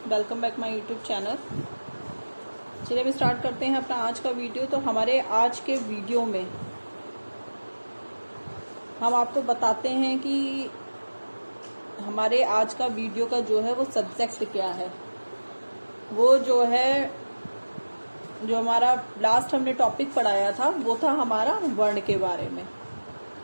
welcome back my YouTube channel. चलिए अभी start करते हैं अपना आज का वीडियो। तो हमारे आज के वीडियो में हम आपको बताते हैं कि हमारे आज का वीडियो का जो है वो सब्जेक्ट क्या है। वो जो है जो हमारा लास्ट हमने टॉपिक पढ़ाया था वो था हमारा वर्ण के बारे में।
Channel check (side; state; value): both; inverted; correlation -1.00